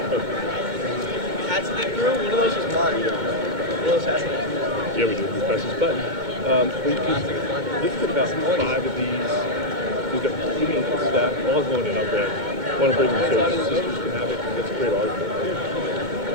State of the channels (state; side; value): late; left; 2.2 ms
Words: yeah, we do. We press this button. We've put about 5 of these. We've got medium staff. All going in. I'll grab. Want to bring them so the sisters can have it. That's a great art.